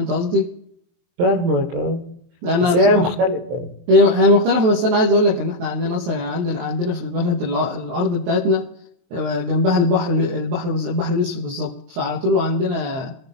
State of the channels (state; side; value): late; left; 23 ms